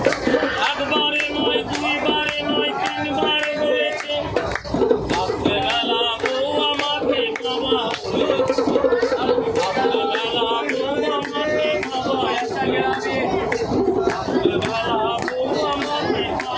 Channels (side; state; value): both; identical; correlation 1.00